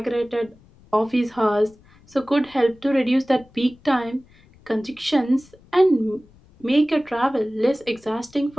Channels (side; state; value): left; noise; rumble, 28 dB below the sound